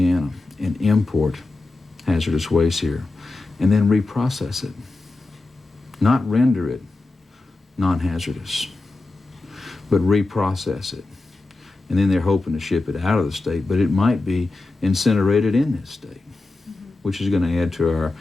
and import hazardous waste here and then reprocess it, not render it non-hazardous, but reprocess it. And then they're hoping to ship it out of the state, but it might be incinerated in this state, which is going to add to our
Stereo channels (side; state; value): right; quieter; 3.2 dB